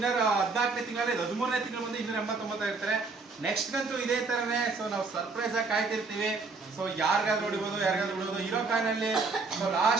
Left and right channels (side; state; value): left; quieter; 4.1 dB